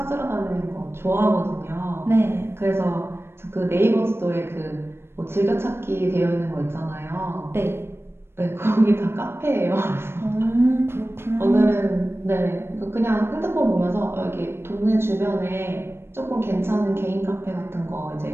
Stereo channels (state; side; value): late; left; 0.12 ms